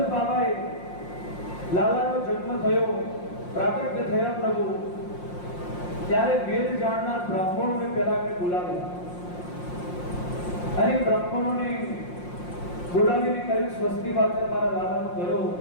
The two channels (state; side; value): late; right; 5.6 ms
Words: બાબાએ લાલાનો જન્મ થયો, પ્રાગટ્ય થયા પ્રભુ, ત્યારે વેદ જાણનાર બ્રાહ્મણોને પહેલા એમને બોલાવ્યા અને બ્રાહ્મણોને બોલાવીને કહ્યું સ્વસ્તિ વાચન મારા લાલાનું કરો,